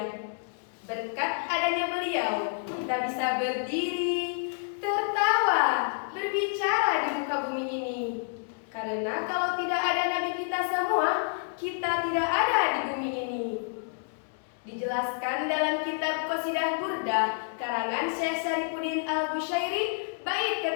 Berkat adanya beliau, kita bisa berdiri, tertawa, berbicara di muka bumi ini. Karena kalau tidak ada Nabi kita semua, kita tidak ada di bumi ini. Dijelaskan dalam kitab Qasidah Burdah karangan Syekh Syarifuddin Al-Bushairi bait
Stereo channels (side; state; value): right; silent; digital silence